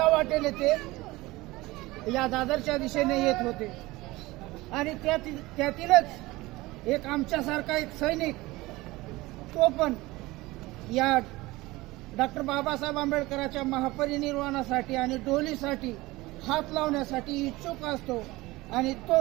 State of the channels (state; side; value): quieter; left; 20.2 dB